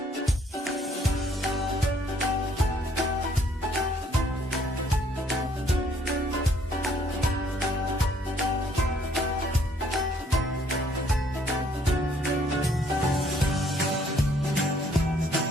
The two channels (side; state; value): both; normal; correlation 0.64